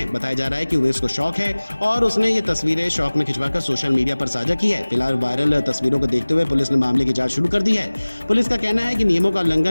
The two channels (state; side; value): inverted; both; correlation -1.00